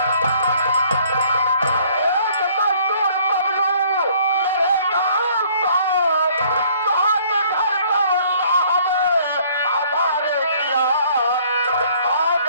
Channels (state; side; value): inverted; both; correlation -0.59